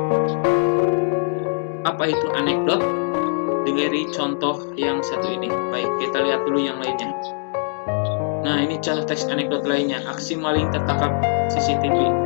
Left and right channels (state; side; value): silent; right; digital silence